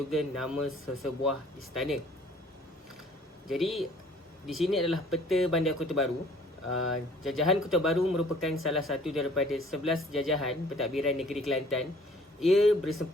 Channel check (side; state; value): both; normal; correlation 0.55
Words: nama sesebuah istana. Jadi, di sini adalah peta Bandar Kota Baru. Jajahan Kota Baru merupakan salah satu daripada 11 jajahan pentadbiran negeri Kelantan. Ia